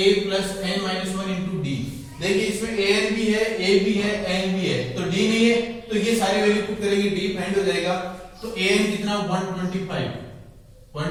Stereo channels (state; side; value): identical; both; correlation 1.00